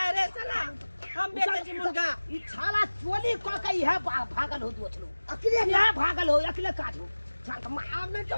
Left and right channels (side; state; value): both; inverted; correlation -1.00